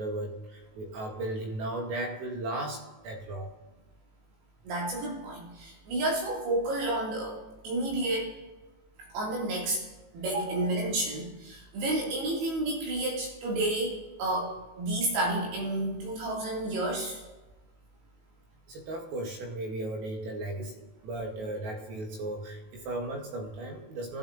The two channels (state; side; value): late; left; 19 ms